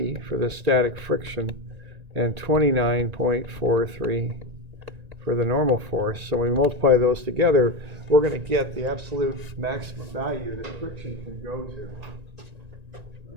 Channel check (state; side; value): late; left; 1.9 ms